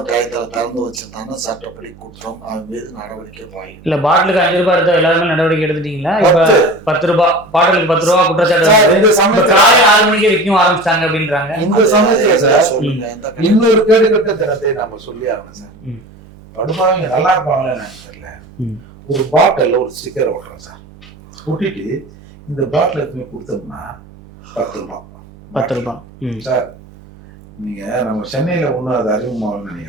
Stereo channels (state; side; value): normal; both; correlation 0.36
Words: டயத்துல திறந்து வச்சிருந்தாங்கன்னா சட்டப்படி குற்றம், அவன் மீது நடவடிக்கை பாயும். இல்ல பாட்டிலுக்கு 5 ரூபாய் எடுத்தா எல்லாருமே நடவடிக்கை எடுத்துட்டீங்களா? இப்ப 10 ரூபாய் பாட்டிலுக்கு 10 ரூபாய் குற்றச்சாட்டு காலை 6 மணிக்கு விற்கும் ஆரம்பிச்சிட்டாங்க அப்படின்றாங்க. இந்த சமயத்துல சார் சொல்லுங்க, இன்னொரு கேடுகட்ட தினத்தை நம்ம சொல்லி ஆகணும் சார். படுபாவங்க நல்லா இருப்பாங்களே தெரியல, ஒரு பாட்டில் ஒரு ஸ்டிக்கர் ஓட்டுறோம் சார், ஒட்டிட்டு இந்த பாட்டில் எதுவுமே கொடுத்தோம்னா 10 ரூபாய் 10 ரூபாய் சார். நீங்க நம்ம சென்னையில ஒண்ணு அது அறிமுகமாகணும்னு